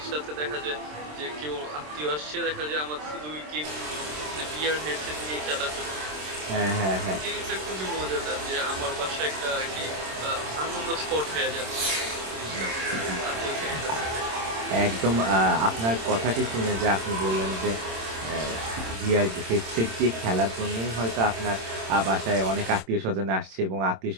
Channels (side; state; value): left; late; 27 ms